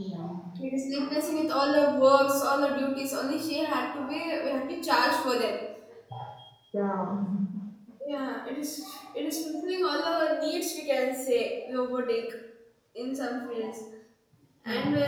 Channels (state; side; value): identical; both; correlation 1.00